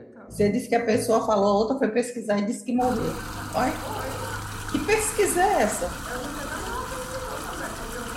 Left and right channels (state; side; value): identical; both; correlation 1.00